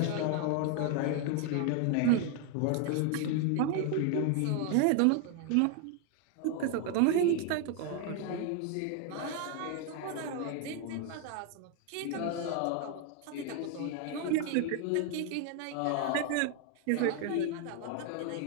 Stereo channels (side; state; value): both; different; correlation 0.01